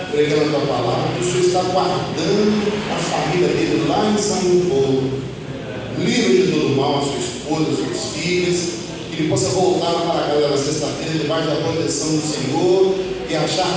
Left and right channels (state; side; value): identical; both; correlation 1.00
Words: pregando a tua palavra, que o Senhor está guardando a família dele lá em São Paulo. Livre de todo mal a sua esposa, as suas filhas, que ele possa voltar para a casa da sexta-feira debaixo da proteção do Senhor e